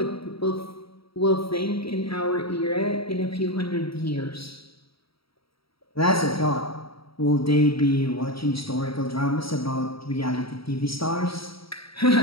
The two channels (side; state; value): right; late; 0.75 ms